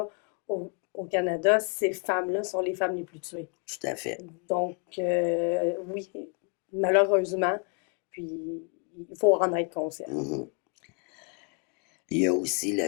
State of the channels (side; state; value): right; quieter; 39.0 dB